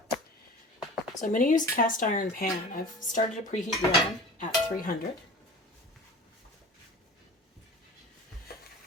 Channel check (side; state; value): both; normal; correlation 0.38